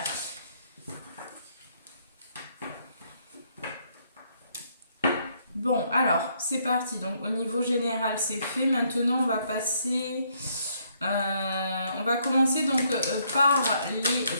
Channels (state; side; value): inverted; both; correlation -0.71